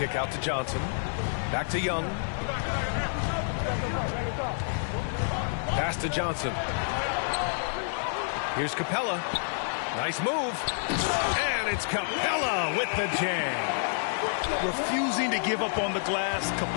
out to Johnson. Back to Young. Pass to Johnson. Here's Capella. Nice move. And it's Capella with the jam. Refusing to give up on the glass,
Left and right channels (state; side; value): silent; right; 56 dB below the other